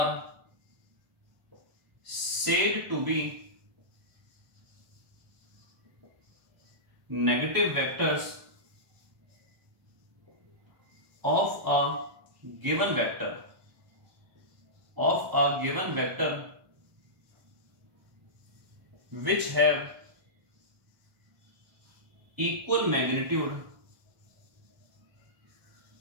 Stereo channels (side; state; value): left; late; 1.1 ms